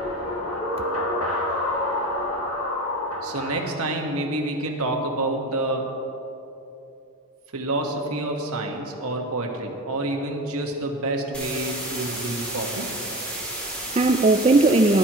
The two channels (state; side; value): normal; both; correlation 0.31